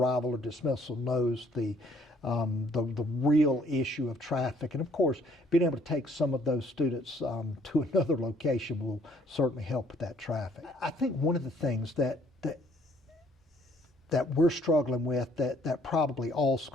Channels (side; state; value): both; normal; correlation 0.63